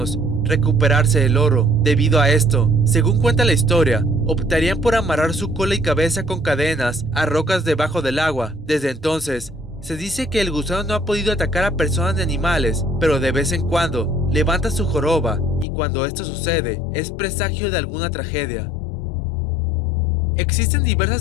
recuperarse el oro. Debido a esto, según cuenta la historia, optarían por amarrar su cola y cabeza con cadenas a rocas debajo del agua. Desde entonces, se dice que el gusano no ha podido atacar a personas ni animales, pero de vez en cuando levanta su joroba, y cuando esto sucede, es presagio de alguna tragedia. Existen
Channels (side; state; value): right; drops out; at 15.7 s